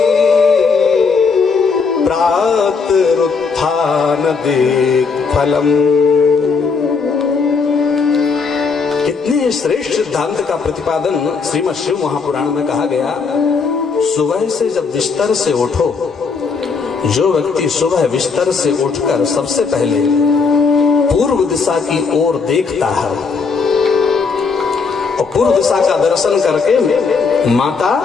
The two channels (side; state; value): right; quieter; 5.0 dB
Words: प्रातरुत्थान दिक्फलम्। कितने श्रेष्ठ सिद्धांत का प्रतिपादन श्रीमद् शिव महापुराण में कहा गया। सुबह से जब बिस्तर से उठो, जो व्यक्ति सुबह बिस्तर से उठकर सबसे पहले पूर्व दिशा की ओर देखता है और पूर्व दिशा का दर्शन करके माता